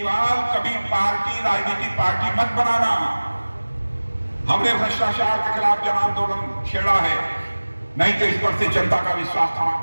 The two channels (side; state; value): both; inverted; correlation -1.00